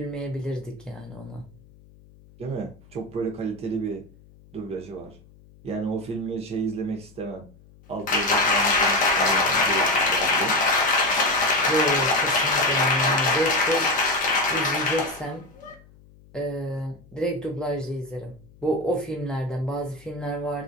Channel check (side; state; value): left; noise; hum, 25 dB below the sound